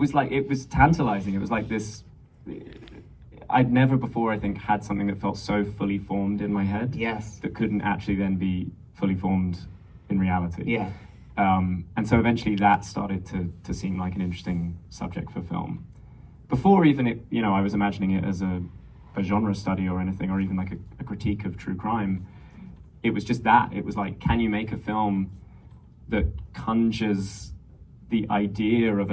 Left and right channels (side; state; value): both; identical; correlation 1.00